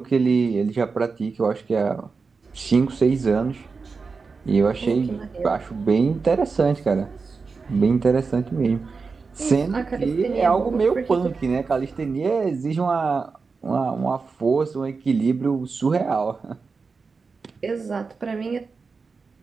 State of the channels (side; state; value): left; quieter; 4.7 dB